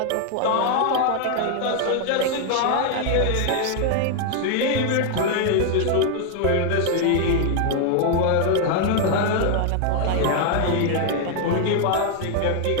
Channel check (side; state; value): both; different; correlation 0.00